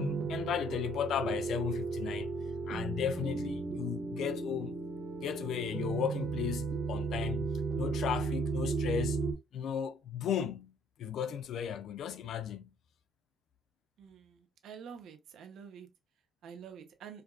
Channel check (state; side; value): normal; both; correlation 0.62